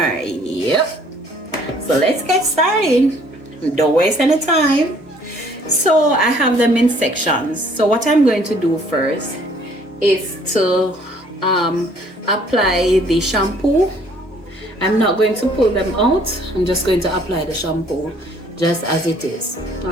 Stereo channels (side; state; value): both; normal; correlation 0.60